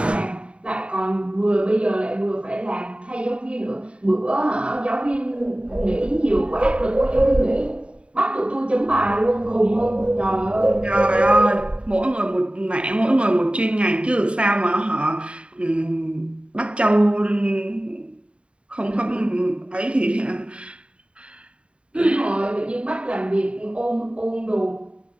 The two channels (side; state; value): left; late; 0.059 ms